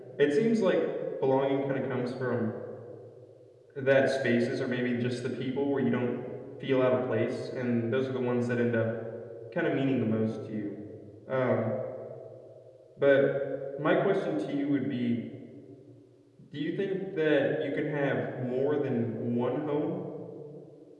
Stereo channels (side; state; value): both; identical; correlation 1.00